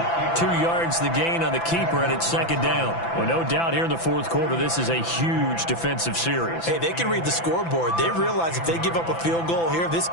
2 yards the gain on the keeper, and it's second down. Well, no doubt here in the fourth quarter, this is a huge defensive series. Hey, they can read the scoreboard. They realize if they give up a field goal here, this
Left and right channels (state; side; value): late; right; 5.9 ms